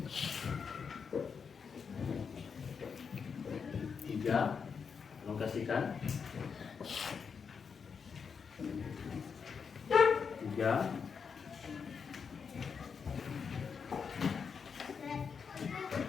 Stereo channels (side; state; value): right; quieter; 6.1 dB